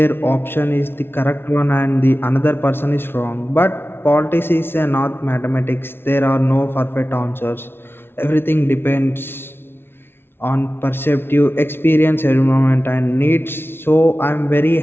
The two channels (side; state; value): right; late; 0.11 ms